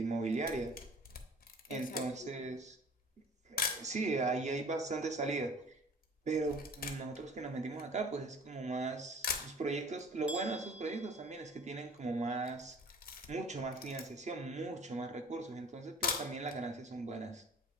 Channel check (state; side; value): normal; both; correlation 0.47